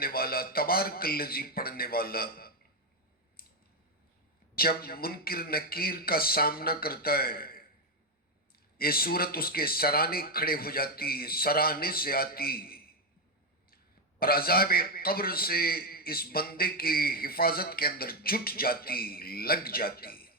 والا، تبارک الذی پڑھنے والا، جب منکر نکیر کا سامنا کرتا ہے، یہ سورت اس کے سرانے کھڑے ہو جاتی، سرانے سے آتی اور عذاب قبر سے اس بندے کی حفاظت کے اندر جٹ جاتی، لگ جاتی.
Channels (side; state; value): both; normal; correlation 0.05